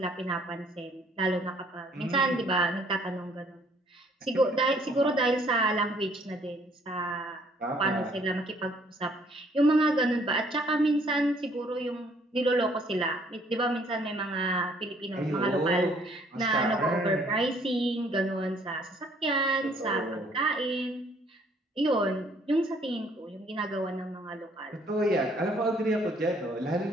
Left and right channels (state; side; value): normal; both; correlation 0.62